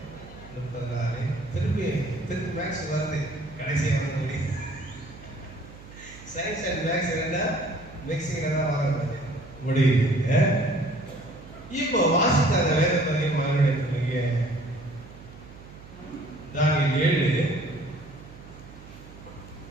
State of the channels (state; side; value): noise; right; hum, 18 dB below the sound